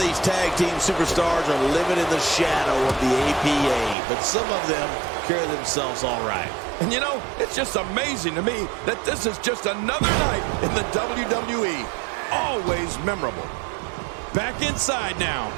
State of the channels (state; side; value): drops out; left; at 4.0 s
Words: tag team superstars are living in the shadow of the APA, but some of them carry themselves all right. And you know, it's just amazing to me that this is just another night in the WWE. Always memorable. Back inside now.